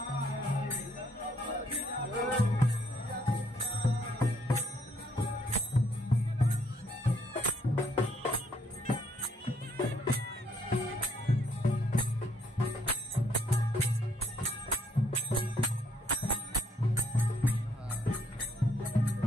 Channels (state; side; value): normal; both; correlation 0.69